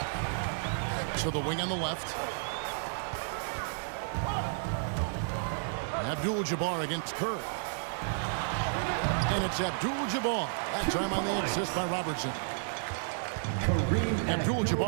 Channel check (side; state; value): left; silent; digital silence